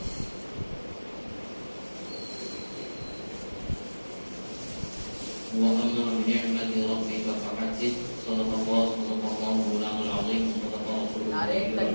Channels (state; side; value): inverted; both; correlation -1.00